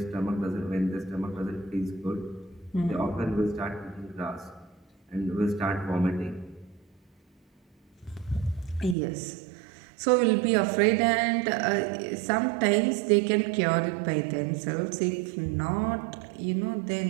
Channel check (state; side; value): drops out; left; at 9.0 s